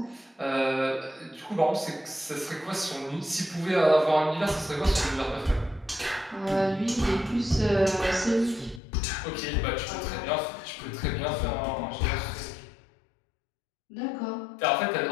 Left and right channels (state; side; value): drops out; right; at 8.8 s